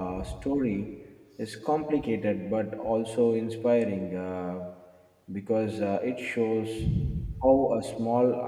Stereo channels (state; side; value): identical; both; correlation 1.00